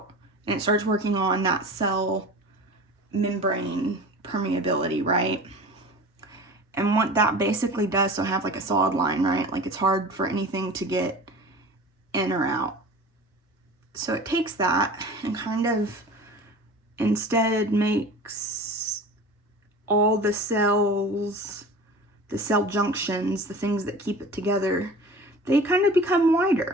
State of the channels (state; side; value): normal; both; correlation 0.38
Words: and it starts working on that cell membrane permeability, right? And what that basically does, so have like a solid line, right? Like it's hard for anything to get in or out. So it takes that and kind of instead makes all the cells, the cell junctions, the things that keep it together, they kind of become